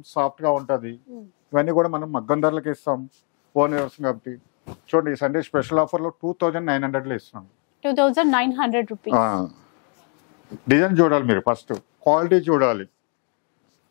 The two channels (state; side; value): quieter; right; 39.2 dB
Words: సాఫ్ట్ గా ఉంటది. ఇవన్నీ కూడా మనం మగ్గం ధరలకి ఇస్తాం, ఓన్ వ్యవసాయం కాబట్టి. చూడండి, ఈ సండే స్పెషల్ ఆఫర్ లో 2,900 లో ఇస్తున్నాం. 2,900 రూపీస్. డిజైన్ చూడాలి మీరు, ఫస్ట్ క్వాలిటీ చూడాలి.